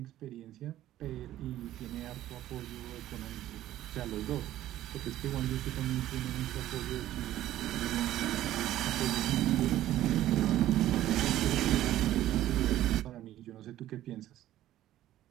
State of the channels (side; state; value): left; quieter; 13.6 dB